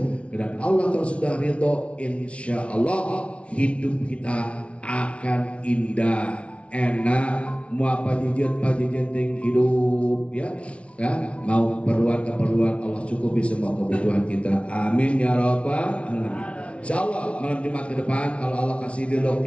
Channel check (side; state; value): right; late; 0.062 ms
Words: dan Allah kalau sudah ridho insya Allah hidup kita akan indah, enak, mau apa jajan hidup, ya, mau keperluan Allah cukupi semua kebutuhan kita, amin ya rabbal alamin. Insyaallah malam Jumat ke depan kalau Allah kasih ridho